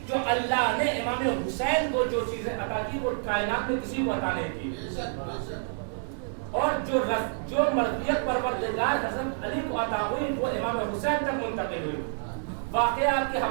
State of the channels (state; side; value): silent; left; 59 dB below the other